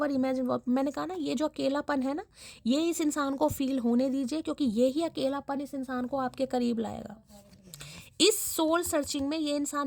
imagine. मैंने कहा ना, ये जो अकेलापन है ना, ये इस इंसान को फील होने दीजिए, क्योंकि यही अकेलापन इस इंसान को आपके करीब लाएगा। इस सोल सर्चिंग में ये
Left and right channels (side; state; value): both; identical; correlation 1.00